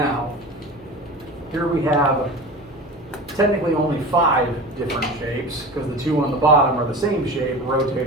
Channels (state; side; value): noise; right; hum, 26 dB below the sound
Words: Here we have technically only 5 different shapes, because the 2 on the bottom are the same shape,